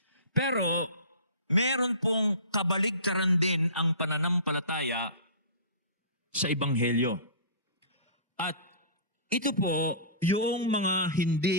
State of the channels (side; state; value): both; inverted; correlation -0.37